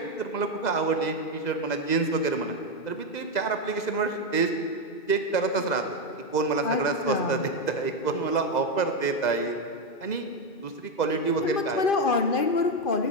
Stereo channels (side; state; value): right; late; 2.0 ms